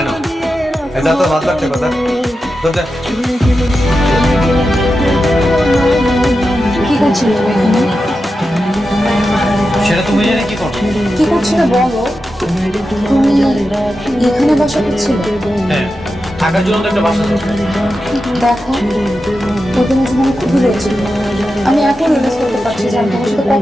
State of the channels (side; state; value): both; normal; correlation 0.90